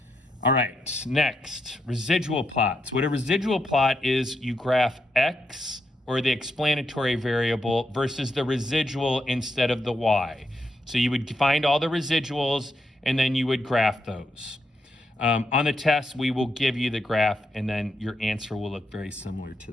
All right, next, residual plots. What a residual plot is, you graph X, or the explanatory variable, versus the residual instead of the Y. So you would find all the residuals, and then you would graph those. On the test, we will give you the graph, and then your answer will look very similar to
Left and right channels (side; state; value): both; normal; correlation 0.81